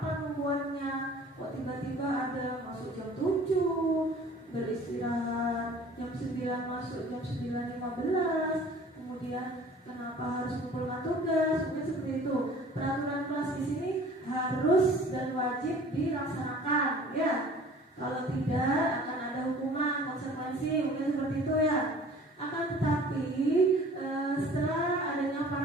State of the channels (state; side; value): normal; both; correlation 0.48